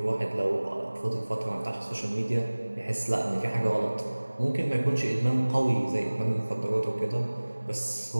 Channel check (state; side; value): inverted; both; correlation -1.00